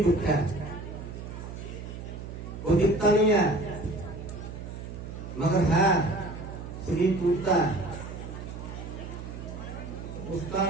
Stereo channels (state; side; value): noise; right; hum, 9 dB below the sound